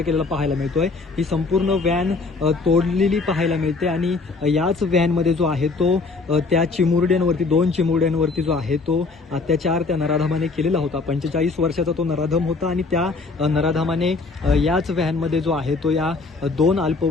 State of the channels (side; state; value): right; quieter; 4.0 dB